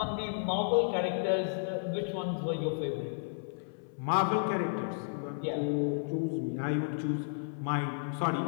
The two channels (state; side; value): silent; right; 56 dB below the other